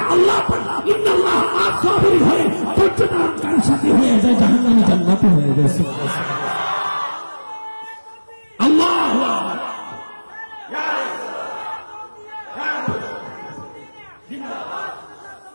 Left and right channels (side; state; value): both; inverted; correlation -1.00